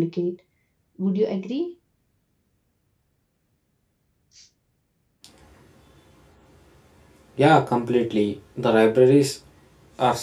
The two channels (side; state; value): both; identical; correlation 1.00